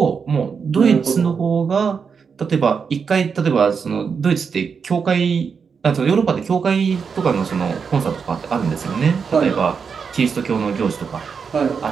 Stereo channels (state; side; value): quieter; left; 6.0 dB